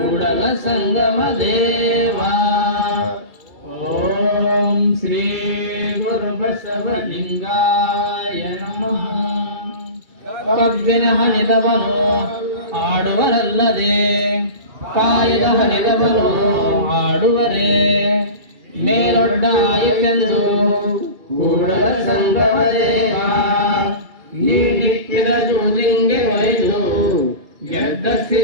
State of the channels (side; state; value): left; late; 2.7 ms